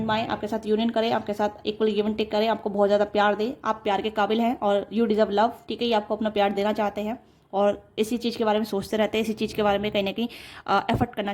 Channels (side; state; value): both; identical; correlation 1.00